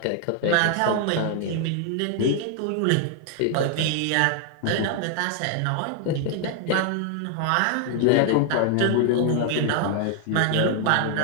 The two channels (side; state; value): both; different; correlation 0.00